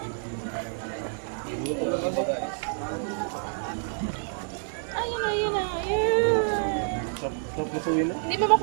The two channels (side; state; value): left; silent; digital silence